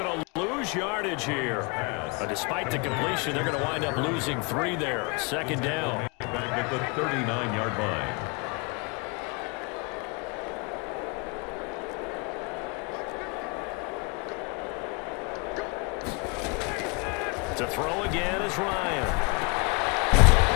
to lose yardage here. But despite the completion, they're going to wind up losing 3 there. Second down. Back at the 39-yard line. To throw again is Ryan.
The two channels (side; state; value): right; quieter; 30.8 dB